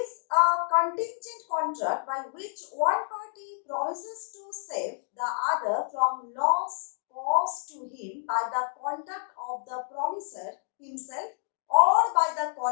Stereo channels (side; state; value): right; silent; digital silence